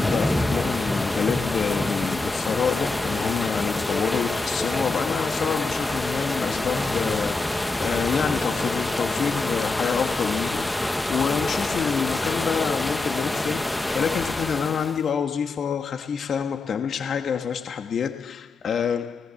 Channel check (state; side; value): quieter; right; 3.8 dB